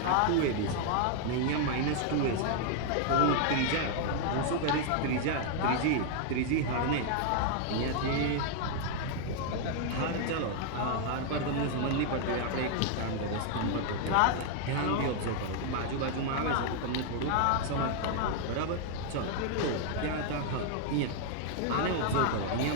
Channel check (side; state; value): both; different; correlation 0.00